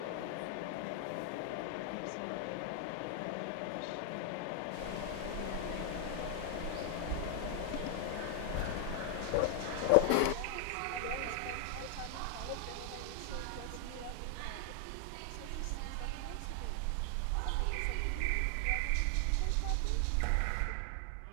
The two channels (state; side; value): different; both; correlation 0.00